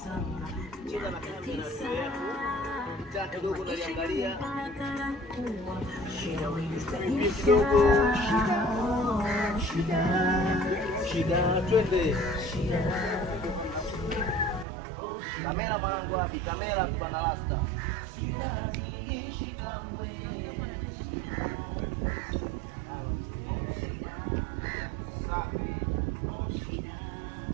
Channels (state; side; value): drops out; left; at 14.7 s